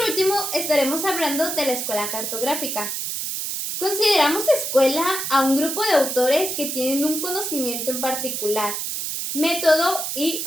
último estaremos hablando de la escuela cartográfica. Consideramos escuela a un grupo de autores que tienen un conocimiento en particular, método y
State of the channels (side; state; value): right; noise; hiss, 3 dB below the sound